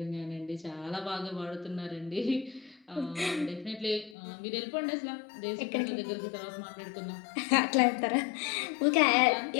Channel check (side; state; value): right; drops out; at 4.2 s